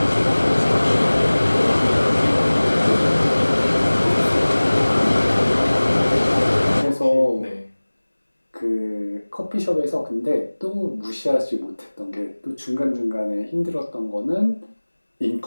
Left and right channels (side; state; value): both; inverted; correlation -1.00